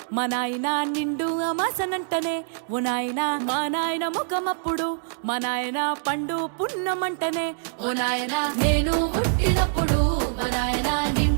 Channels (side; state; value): left; silent; digital silence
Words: మా నాయన నిండు అమాసనంటనే ఓ నాయన మా నాయన ముఖమప్పుడు మా నాయన పండు పున్నమంటనే ఓ నాయన నేను పుట్టినప్పుడు మా నాయన